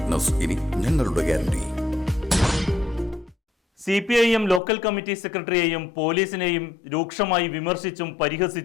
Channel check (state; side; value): drops out; right; at 4.6 s